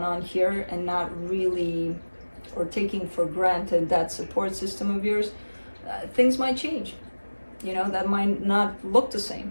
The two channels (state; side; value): inverted; both; correlation -1.00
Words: on here and not really, or taking for granted that support system of yours, things might change. That might not look the